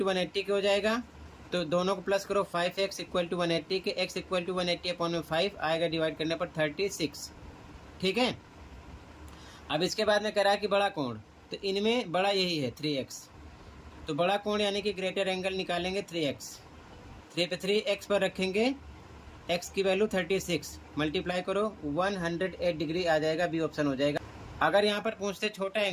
180 के हो जाएगा। तो दोनों को प्लस करो, 5x इक्वल टू 180 के, x इक्वल टू 180/5 आएगा, डिवाइड करने पर 36, ठीक है। अब इसके बाद में कह रहा है कि बड़ा कोण, तो इनमें बड़ा यही है 3x। तो बड़ा कोण यानी कि ग्रेटर एंगल निकालेंगे 3x। 3 पे 3x पर रखेंगे, x की वैल्यू 36, मल्टीप्लाई करो 108 डिग्री आ जाएगा, बी ऑप्शन हो जाएगा। अगर यहाँ पर पूछते छोटा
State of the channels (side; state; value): both; identical; correlation 1.00